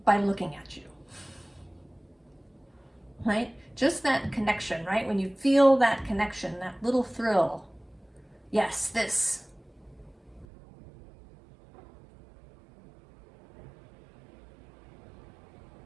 by looking at you, right? Just that connection, right? When you feel that connection, that little thrill, yes, this.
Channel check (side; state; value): left; drops out; at 10.5 s